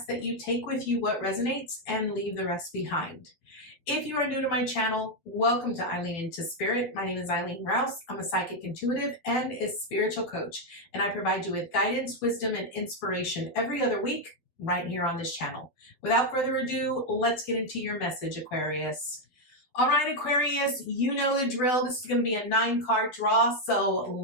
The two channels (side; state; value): right; late; 12 ms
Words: that you take with you what resonates and leave the rest behind. If you are new to my channel, welcome to Eileen Into Spirit. My name is Eileen Rouse. I'm a psychic intuitive and a spiritual coach, and I provide you with guidance, wisdom, and inspiration every other week right here on this channel. Without further ado, let's get into your message, Aquarius. All right, Aquarius, you know the drill. This is going to be a 9-card draw, so